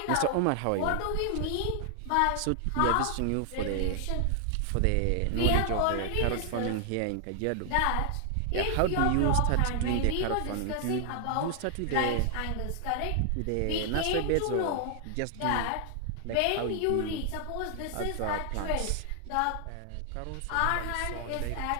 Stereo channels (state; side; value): different; both; correlation 0.00